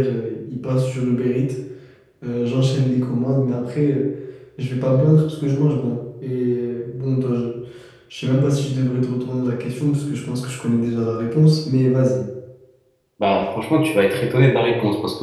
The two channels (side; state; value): both; identical; correlation 1.00